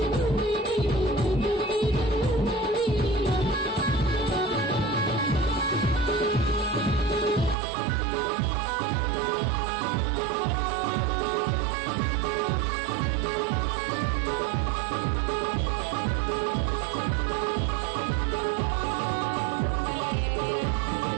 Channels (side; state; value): left; drops out; at 7.6 s